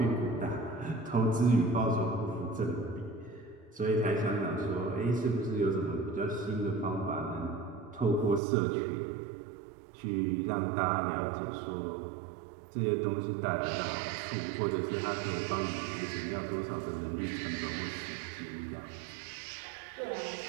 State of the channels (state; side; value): drops out; left; at 8.4 s